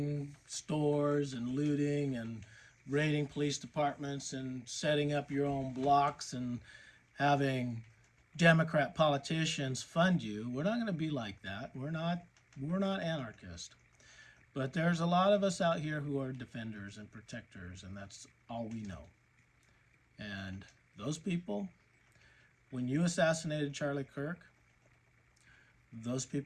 stores and looting and raiding police departments and setting up your own blocks and having Democrat politicians fund you. We're not going to be like that. We're not anarchists. But there's a lot of us out here who are defenders and protectors, and that's all we know. And those people, when you assassinated Charlie Kirk, those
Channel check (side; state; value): both; identical; correlation 1.00